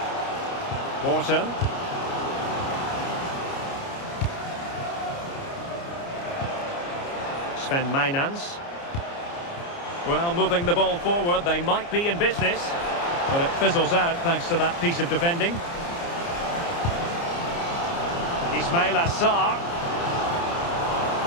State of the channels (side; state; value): right; late; 29 ms